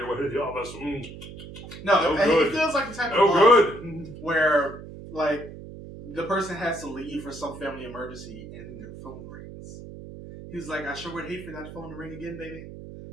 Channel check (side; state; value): right; noise; hum, 13 dB below the sound